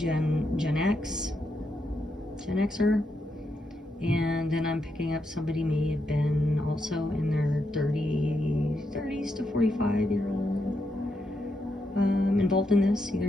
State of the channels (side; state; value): both; normal; correlation 0.82